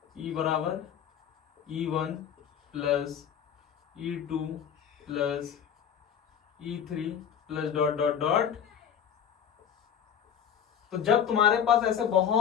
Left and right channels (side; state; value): right; quieter; 8.5 dB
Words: E बराबर E1 plus E2 plus E3 plus dot dot dot. तो जब तुम्हारे पास ऐसे